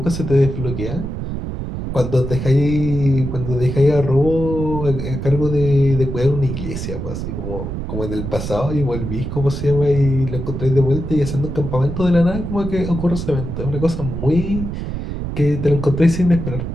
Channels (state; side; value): noise; right; rumble, 5 dB below the sound